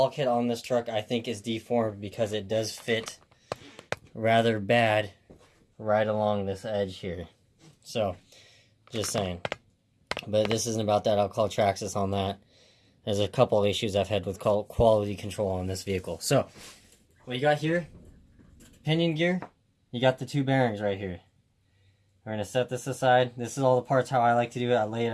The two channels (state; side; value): identical; both; correlation 1.00